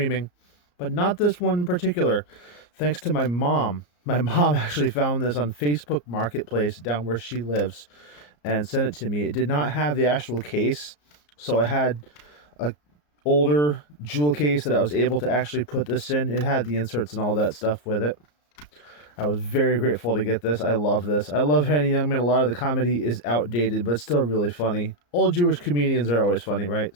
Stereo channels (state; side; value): late; right; 34 ms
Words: but not this one in particular, thanks to my mom. My mom actually found this on Facebook Marketplace down where she lives and sent it to me. It did not have the actual case, so I had a older jewel case that I was able to actually put this in. It had the inserts and all that stuff with it. I was very grateful to get this. I love this. I love Henny Youngman. A lot of the comedy is outdated, but still really funny. Old Jewish comedians are always funny, right?